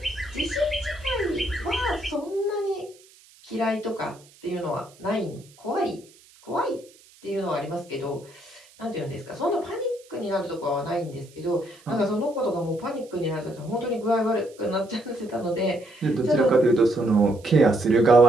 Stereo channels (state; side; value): noise; right; hiss, 26 dB below the sound